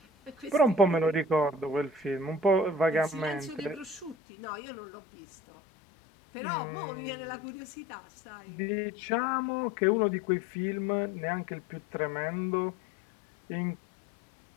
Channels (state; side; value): drops out; right; at 4.2 s